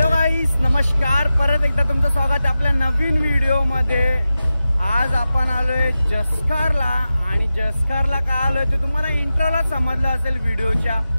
गाईस, नमस्कार. परत एकदा तुमचं स्वागत आहे आपल्या नवीन व्हिडिओ मध्ये. आज आपण आलोय जसकारला. आणि जसकारला का आलोय ते तुम्हाला इंट्रोला समजलं असेल व्हिडिओच्या.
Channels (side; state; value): both; inverted; correlation -0.93